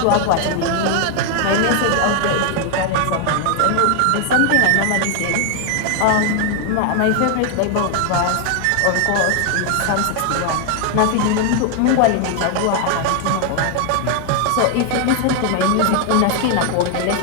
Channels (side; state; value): both; different; correlation 0.00